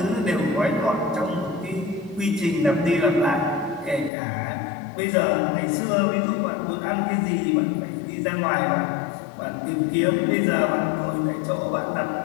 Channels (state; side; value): drops out; right; at 4.1 s